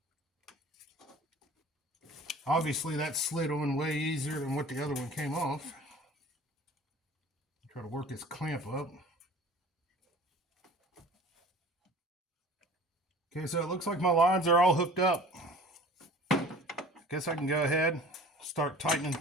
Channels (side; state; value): both; normal; correlation 0.45